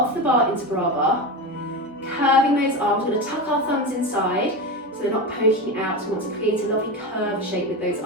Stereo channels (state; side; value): normal; both; correlation 0.20